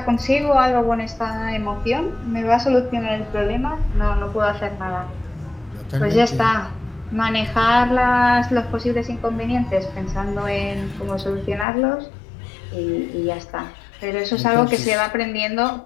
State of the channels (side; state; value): right; drops out; at 11.7 s